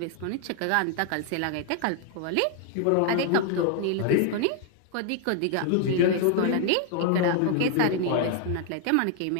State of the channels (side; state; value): both; different; correlation 0.00